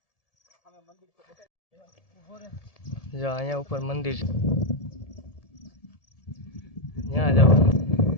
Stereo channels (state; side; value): late; right; 1.7 ms